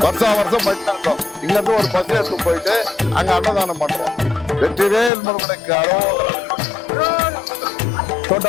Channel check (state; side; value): drops out; right; at 5.1 s